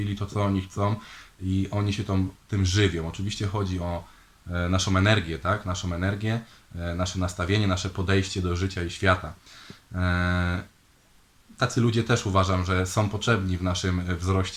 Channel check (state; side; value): identical; both; correlation 1.00